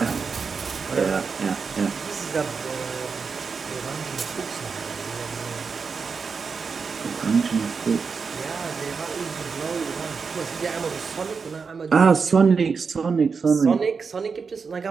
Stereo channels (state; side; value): quieter; left; 5.3 dB